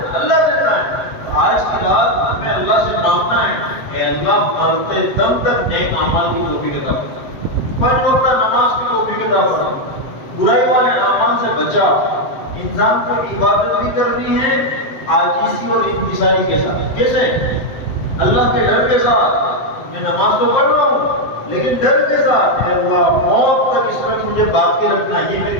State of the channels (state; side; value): late; right; 7.8 ms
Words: اللہ دیتا ہے۔ آج کی رات ہمیں اللہ سے مانگنا ہے کہ اللہ مرتے دم تک نیک اعمال کی توفیق عطا فرما، 5 وقت نماز کی توفیق عطا فرما، برائی والے اعمال سے بچا۔ انسان کو عبادت بھی کرنی ہے عاجزی اور انکساری کے ساتھ، کیسے؟ اللہ کے ڈر کے ساتھ۔ میں نماز تو پڑھ رہا ہوں لیکن ڈر کے ساتھ، اے اللہ موت تک اس طرح مجھے باقی رکھنا، یہ